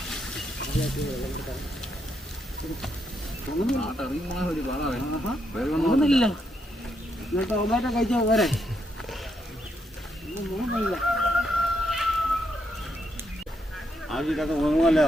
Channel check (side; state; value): both; normal; correlation 0.78